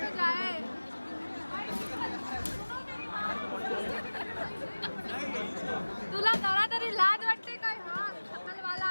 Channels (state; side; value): inverted; both; correlation -1.00